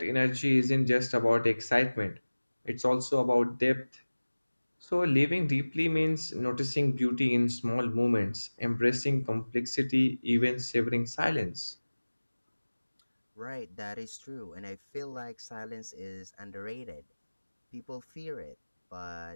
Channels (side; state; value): both; inverted; correlation -1.00